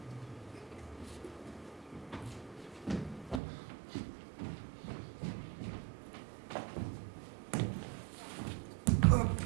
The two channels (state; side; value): drops out; left; at 3.4 s